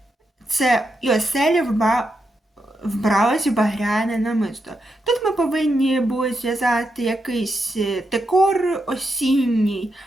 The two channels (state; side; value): normal; both; correlation 0.84